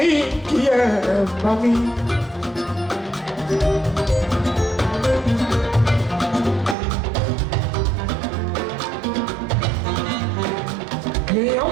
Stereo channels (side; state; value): left; drops out; at 6.8 s